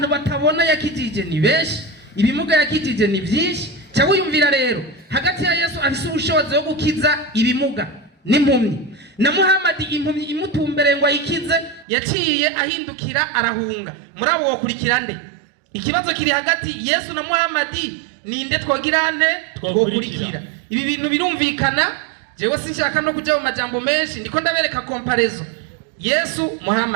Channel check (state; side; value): drops out; left; at 11.9 s